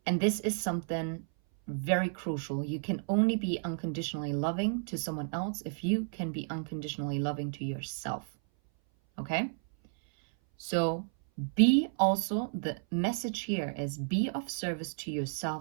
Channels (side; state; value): left; silent; 56 dB below the other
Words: And this is something very crucial. You can only be unconditionally loving to someone else if you can be unconditionally loving to yourself. Okay? So be also, the message here is be of service to